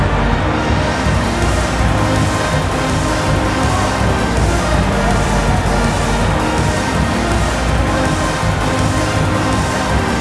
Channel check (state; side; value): identical; both; correlation 1.00